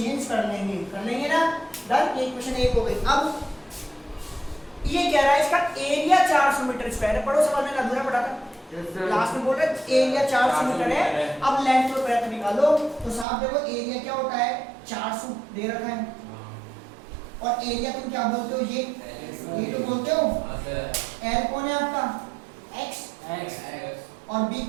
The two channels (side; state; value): left; drops out; at 13.2 s